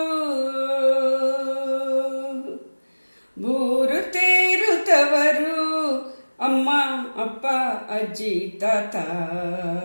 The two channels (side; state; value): both; inverted; correlation -1.00